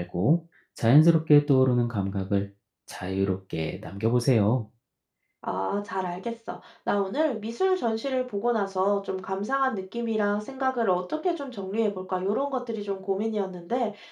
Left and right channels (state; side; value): identical; both; correlation 1.00